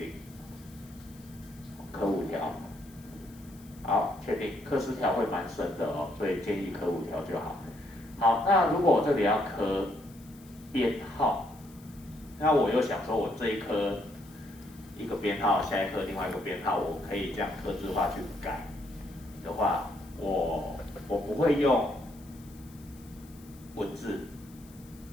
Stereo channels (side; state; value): left; noise; hiss, 24 dB below the sound